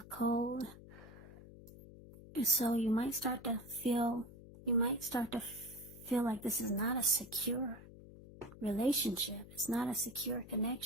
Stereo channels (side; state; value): left; noise; hum, 17 dB below the sound